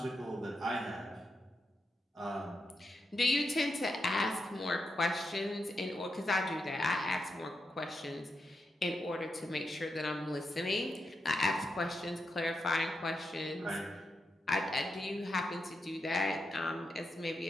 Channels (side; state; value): both; normal; correlation 0.85